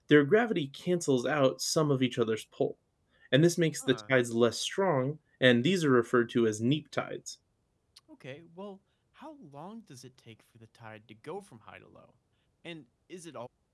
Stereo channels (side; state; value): both; identical; correlation 1.00